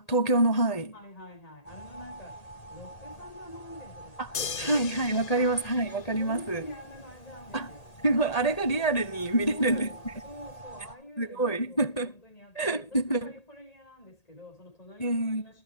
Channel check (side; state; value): right; late; 1.8 ms